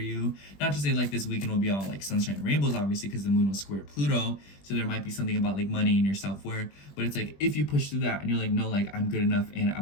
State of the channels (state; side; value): late; right; 20 ms